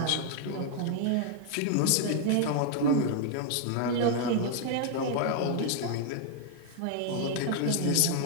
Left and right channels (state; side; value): different; both; correlation 0.00